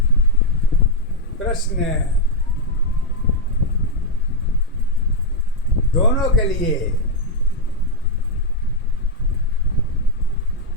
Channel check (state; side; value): normal; both; correlation -0.01